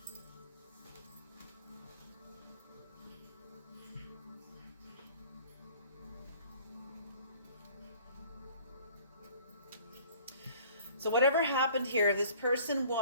So whatever happened here, this person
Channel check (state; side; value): inverted; both; correlation -0.52